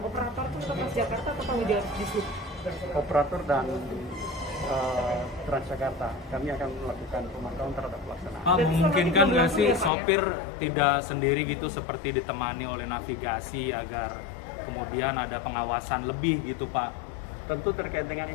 itu Transjakarta atau tanggung jawab di sub? Operator dan Transjakarta, kami akan melakukan pemantauan terhadap pelaksanaan. Memungkinkan nggak sih sopir tidak sendiri gitu, seperti ditemani oleh navigasi agar kemudian ada pengawasan lebih gitu Pak? Tentu terkait dengan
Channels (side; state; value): right; drops out; at 9.9 s